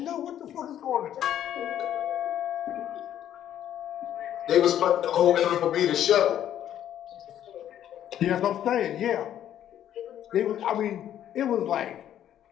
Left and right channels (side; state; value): right; quieter; 10.9 dB